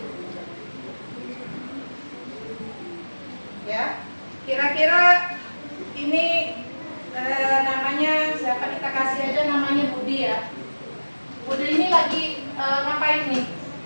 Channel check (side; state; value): both; inverted; correlation -1.00